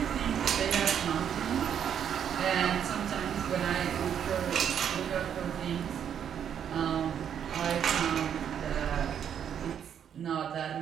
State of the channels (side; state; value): left; quieter; 8.7 dB